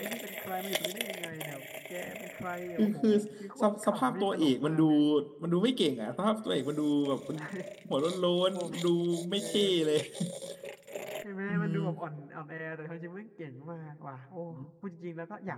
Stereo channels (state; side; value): identical; both; correlation 1.00